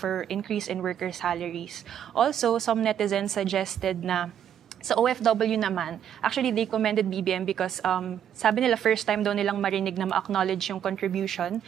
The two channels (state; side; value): quieter; left; 9.5 dB